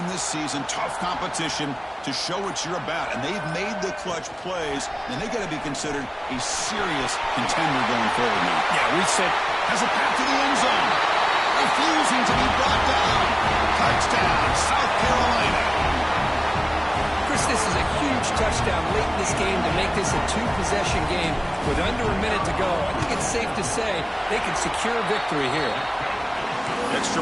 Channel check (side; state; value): both; identical; correlation 1.00